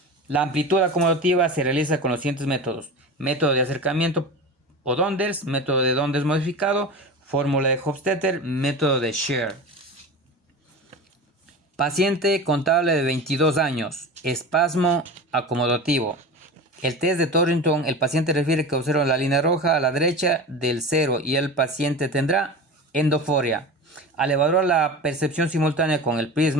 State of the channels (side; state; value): both; normal; correlation 0.30